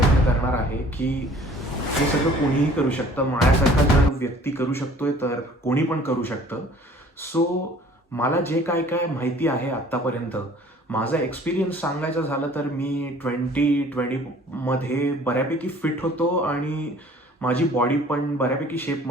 करणार आहे की हे सगळं कोणीही करू शकतं. माझ्यासारखा जर व्यक्ती करू शकतोय तर कोणी पण करू शकतं. सो मला जे काय काय माहिती आहे आत्तापर्यंत, माझा एक्सपिरियन्स सांगायचं झालं तर मी 2020मध्ये बऱ्यापैकी फिट होतो आणि माझी बॉडी पण बऱ्यापैकी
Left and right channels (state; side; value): normal; both; correlation 0.52